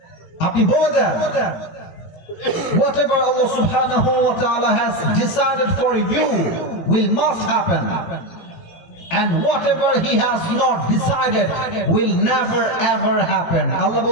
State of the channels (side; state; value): right; late; 18 ms